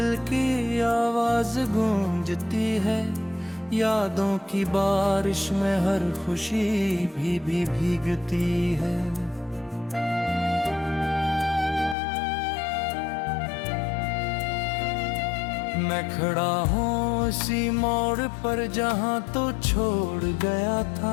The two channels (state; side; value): drops out; right; at 12.0 s